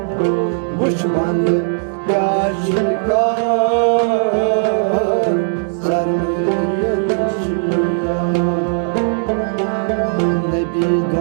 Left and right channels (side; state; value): left; silent; 68 dB below the other